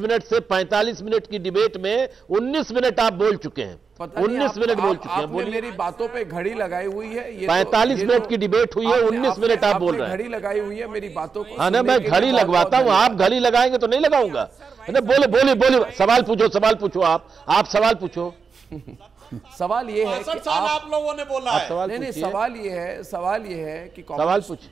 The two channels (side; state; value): left; quieter; 5.5 dB